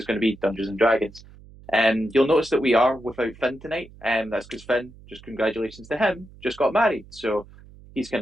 going to be Dungeons and Dragons. You'll notice that we are without Finn tonight, and that's because Finn, just congratulations to him, just got married, so he's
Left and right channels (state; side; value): noise; right; hum, 21 dB below the sound